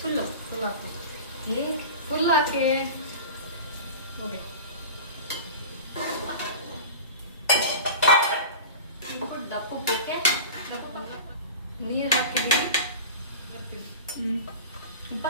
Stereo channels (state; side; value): inverted; both; correlation -0.33